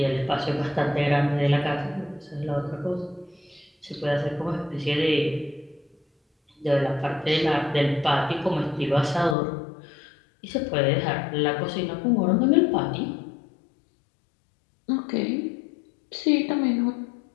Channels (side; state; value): right; drops out; at 9.3 s